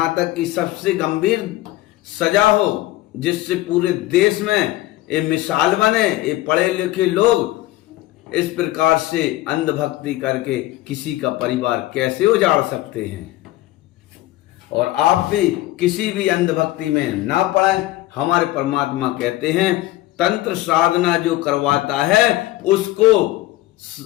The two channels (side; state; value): right; quieter; 16.7 dB